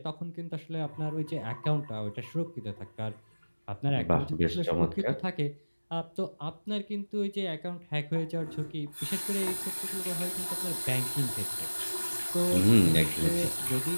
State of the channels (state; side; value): inverted; both; correlation -1.00